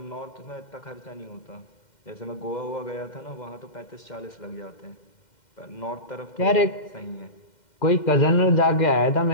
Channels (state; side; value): late; right; 2.1 ms